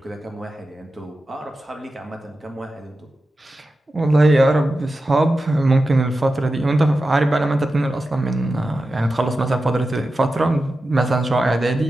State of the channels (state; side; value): normal; both; correlation 0.92